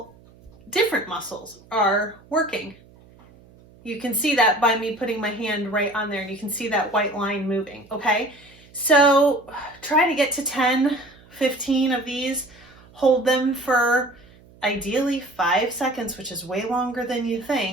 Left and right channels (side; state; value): right; noise; hum, 26 dB below the sound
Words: different muscles are working. You can see that by me putting my hand right on there, and you can see that white line moving, okay? So try to get to 10, 15 of these. Hold them for ideally 5 seconds, which is way longer than you